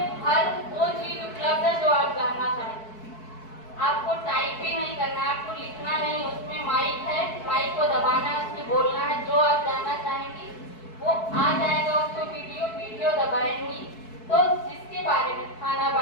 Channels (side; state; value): right; late; 4.6 ms